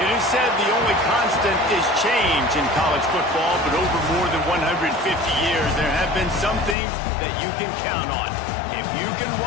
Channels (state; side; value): drops out; right; at 6.8 s